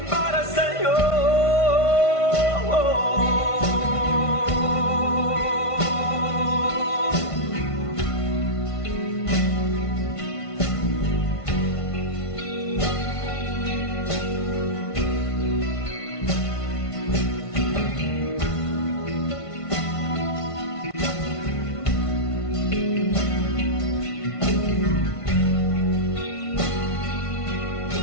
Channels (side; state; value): right; late; 1.5 ms